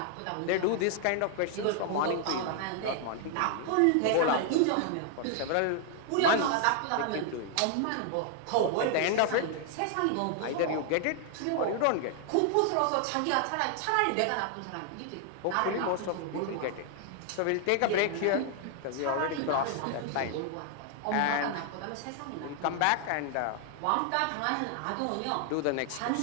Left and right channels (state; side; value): different; both; correlation 0.00